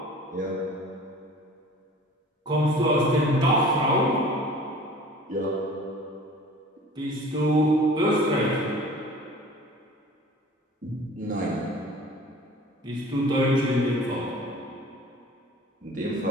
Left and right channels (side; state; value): both; normal; correlation 0.45